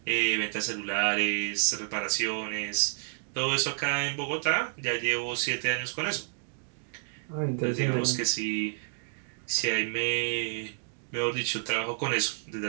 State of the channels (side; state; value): left; silent; 58 dB below the other